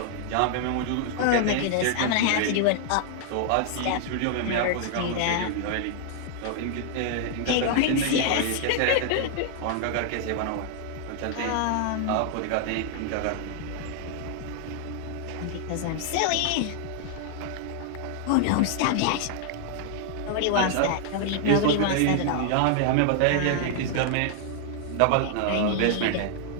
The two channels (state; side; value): different; both; correlation 0.00